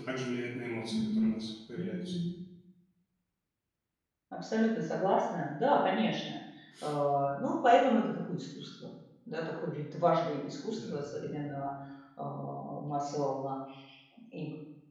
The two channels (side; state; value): both; identical; correlation 1.00